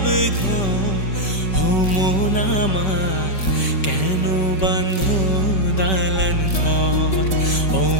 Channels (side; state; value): right; late; 5.2 ms